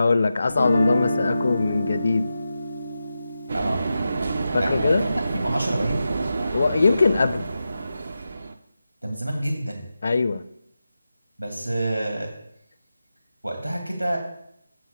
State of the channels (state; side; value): inverted; both; correlation -0.91